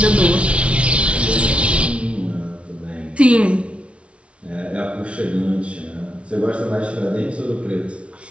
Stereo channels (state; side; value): late; left; 0.061 ms